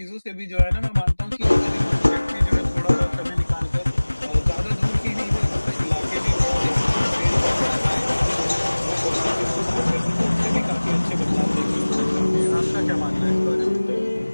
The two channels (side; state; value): both; inverted; correlation -1.00